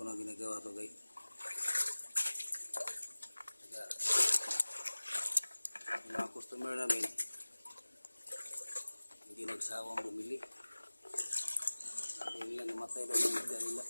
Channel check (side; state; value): both; inverted; correlation -1.00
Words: na ginagawa to guys. Kaya, yung mga customer namin, hindi nagsawang bumili. Sabi nila namatay daw ng isda nila.